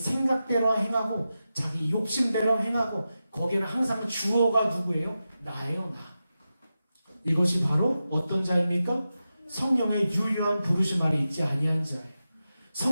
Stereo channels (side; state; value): both; inverted; correlation -0.91